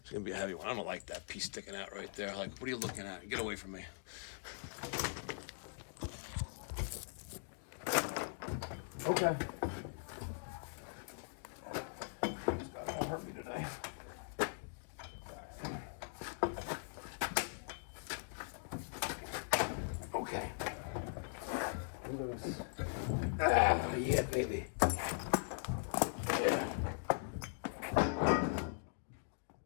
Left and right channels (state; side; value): silent; right; digital silence